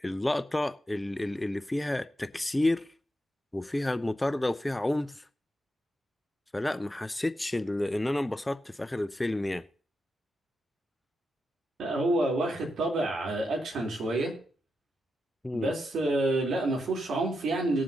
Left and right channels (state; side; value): normal; both; correlation 0.86